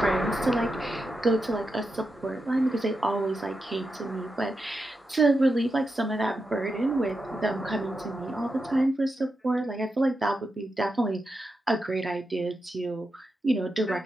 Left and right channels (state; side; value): normal; both; correlation 0.88